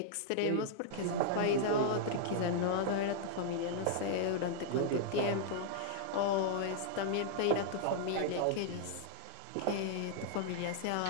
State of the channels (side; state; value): both; different; correlation -0.01